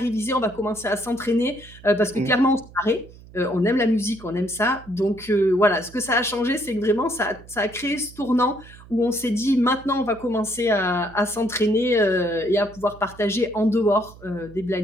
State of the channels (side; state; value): right; noise; hum, 20 dB below the sound